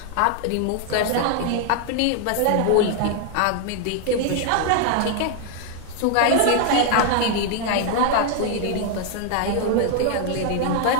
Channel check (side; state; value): both; different; correlation 0.00